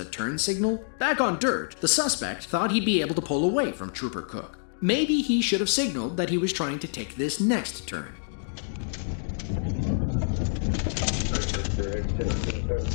turn signal? Back on dirt, the suspect thought he'd be able to pull away from Trooper Cook. Maybe he should have signaled that he was trying to take this next turn.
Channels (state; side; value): silent; right; digital silence